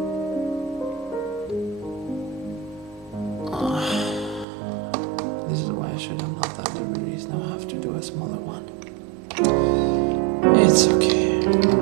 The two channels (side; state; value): left; drops out; at 4.5 s